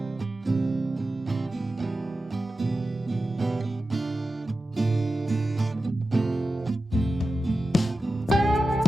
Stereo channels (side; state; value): both; normal; correlation 0.93